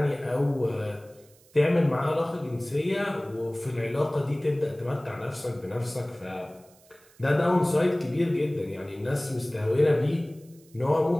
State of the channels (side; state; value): right; noise; hiss, 28 dB below the sound